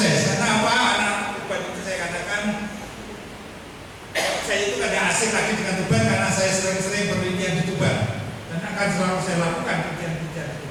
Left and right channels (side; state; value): both; identical; correlation 1.00